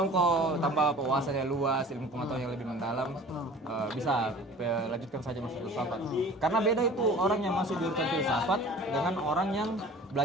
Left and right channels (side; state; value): both; normal; correlation 0.44